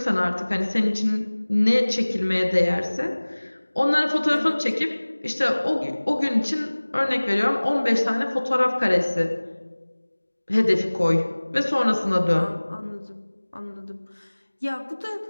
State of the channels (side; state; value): both; inverted; correlation -1.00